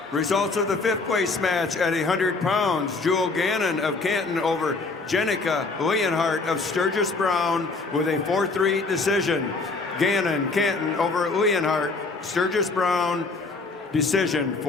Results of the 5th place match at 100 pounds. Jewel Gannon of Canton over Jenica Leonhardt of Sturgis Brown with a 4-3 decision. Gannon, Canton over Leonhardt, Sturgis Brown Decision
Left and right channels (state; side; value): quieter; right; 3.8 dB